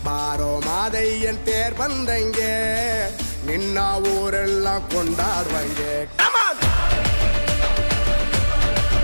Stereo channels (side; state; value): both; inverted; correlation -1.00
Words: ಬಾರೋ ಮಾದಯ್ಯನ್ ತೇರ್ ಬಂದಂಗೆ ನಿನ್ನ ಊರೆಲ್ಲ ಕೊಂಡಾಡುವಂಗೆ.